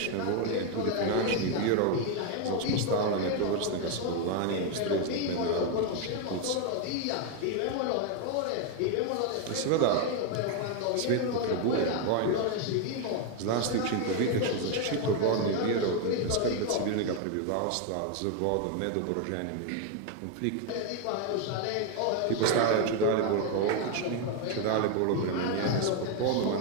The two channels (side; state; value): both; different; correlation 0.01